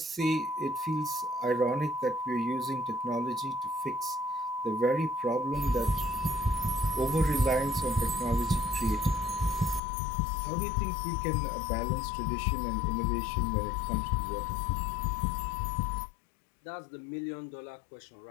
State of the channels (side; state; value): right; drops out; at 9.8 s